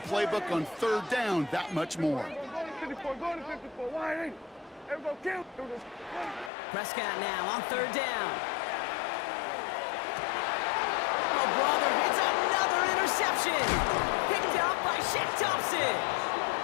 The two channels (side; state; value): right; drops out; at 6.5 s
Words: playbook on 3rd down that much more. Prescott now on 3rd down. Oh, brother, it's another interception. Picked up by Shaq Thompson.